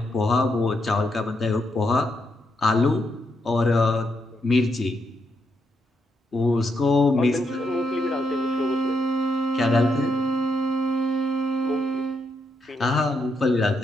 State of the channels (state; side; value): normal; both; correlation 0.79